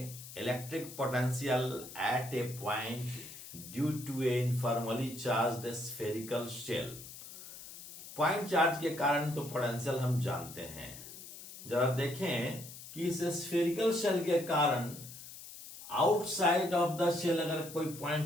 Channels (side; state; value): left; noise; hiss, 14 dB below the sound